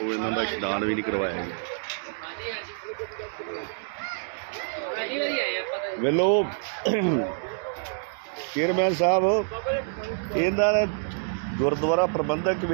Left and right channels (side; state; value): left; silent; digital silence